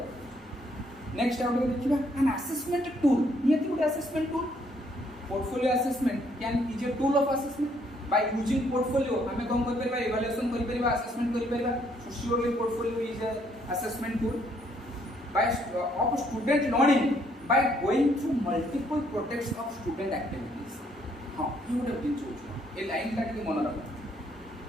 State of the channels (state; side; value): normal; both; correlation 0.68